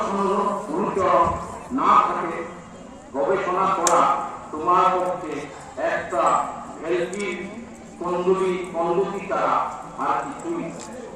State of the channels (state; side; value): identical; both; correlation 1.00